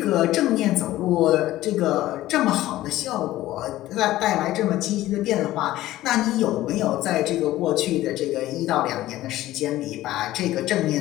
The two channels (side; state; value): right; quieter; 15.5 dB